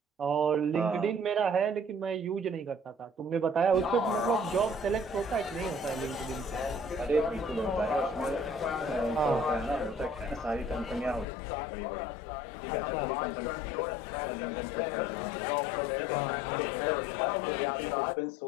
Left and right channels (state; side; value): drops out; right; at 11.2 s